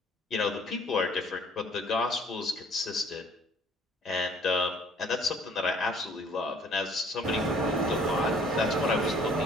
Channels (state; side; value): normal; both; correlation 0.56